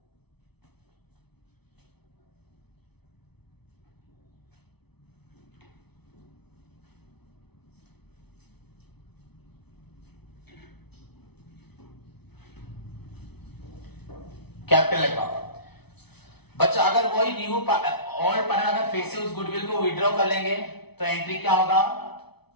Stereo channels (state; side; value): late; right; 0.99 ms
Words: capital account. बच्चा अगर वही न्यू ऑल पार्टनर अगर फिर से उस गुडविल को विड्रॉ कर लेंगे तो एंट्री क्या होगा,